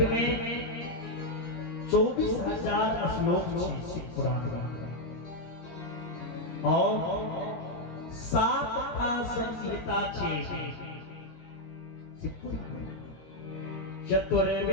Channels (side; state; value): right; late; 18 ms